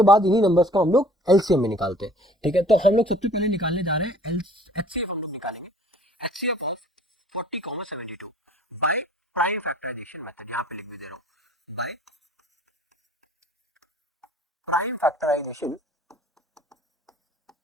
बाद इन्हीं नंबर्स को हम लोग एलसीएम में निकालते हैं। ठीक है, तो हम लोग सबसे पहले निकालने जा रहे हैं एचसीएफ। हम लोग निकालेंगे HCF of 40,72 by prime factorization method. यहाँ पे लिख भी दे रहा हूँ, बाय प्राइम फैक्टराइजेशन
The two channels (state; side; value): normal; both; correlation 0.53